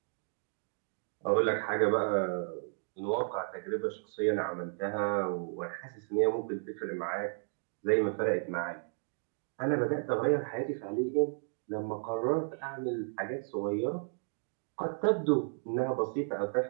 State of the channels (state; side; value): silent; left; digital silence